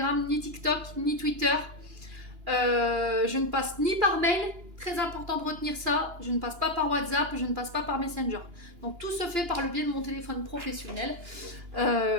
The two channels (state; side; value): late; left; 2.9 ms